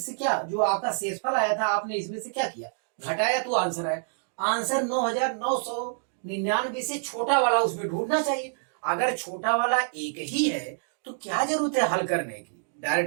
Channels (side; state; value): left; silent; digital silence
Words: क्या, जो आपका शेषफल आया था आपने इसमें से क्या किया, घटाया, तो आंसर है। आंसर 9,999 से छोटा वाला उसमें ढूंढना चाहिए। अगर छोटा वाला एक ही है तो क्या जरूरत है हल करने की,